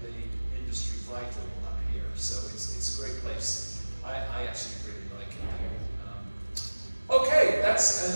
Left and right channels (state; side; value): inverted; both; correlation -1.00